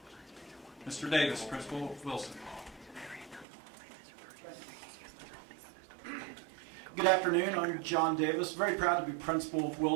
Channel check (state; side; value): drops out; left; at 3.5 s